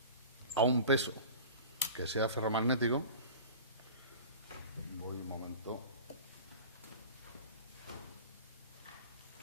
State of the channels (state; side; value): inverted; both; correlation -0.38